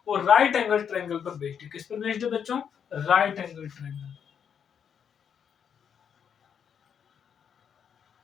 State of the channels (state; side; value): quieter; right; 7.8 dB